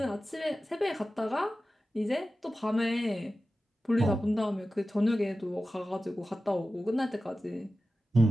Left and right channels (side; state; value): both; normal; correlation 0.94